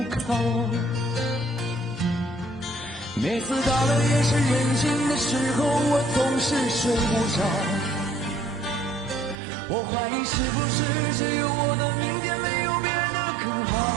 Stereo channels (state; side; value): drops out; left; at 9.3 s